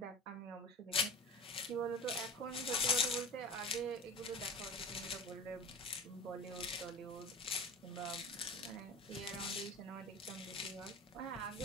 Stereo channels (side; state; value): both; normal; correlation 0.34